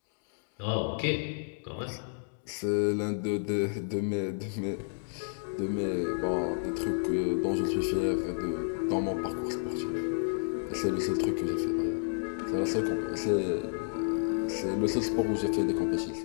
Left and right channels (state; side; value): silent; right; digital silence